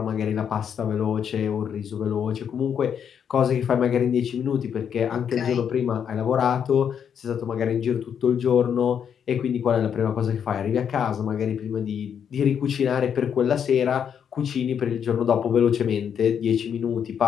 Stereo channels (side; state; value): right; quieter; 8.0 dB